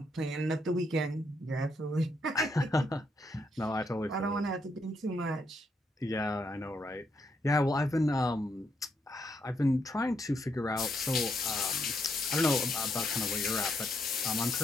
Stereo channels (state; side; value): normal; both; correlation 0.77